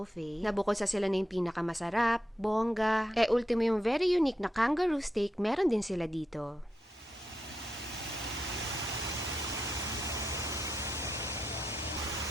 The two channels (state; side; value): normal; both; correlation 0.85